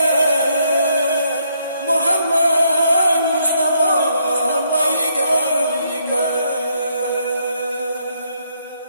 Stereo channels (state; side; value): inverted; both; correlation -0.73